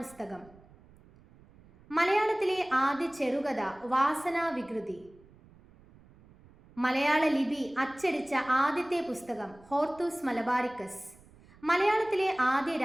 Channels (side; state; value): right; noise; rumble, 25 dB below the sound